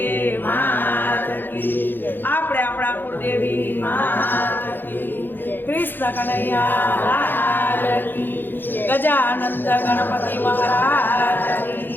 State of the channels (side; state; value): right; late; 0.095 ms